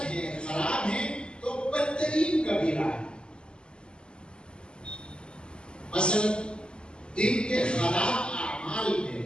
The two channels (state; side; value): late; right; 0.049 ms